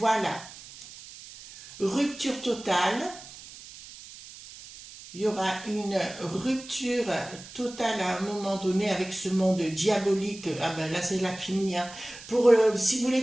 Rupture totale. Il y aura une rupture totale à un moment donné avec ce monde diabolique. Ah ben là, c'est la finie. Hein. Si vous voulez,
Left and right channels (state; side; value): noise; right; hiss, 16 dB below the sound